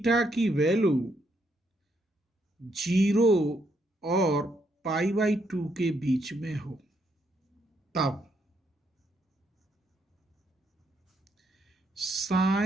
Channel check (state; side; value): normal; both; correlation 0.76